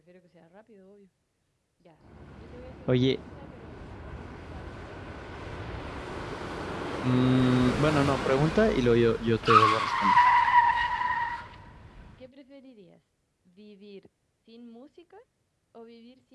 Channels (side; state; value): both; identical; correlation 1.00